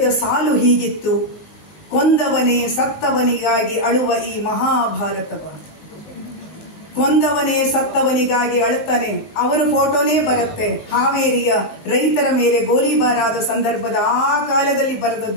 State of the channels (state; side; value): late; right; 19 ms